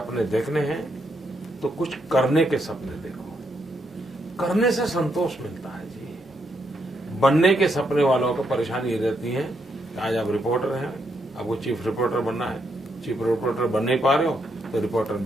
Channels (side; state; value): both; normal; correlation 0.78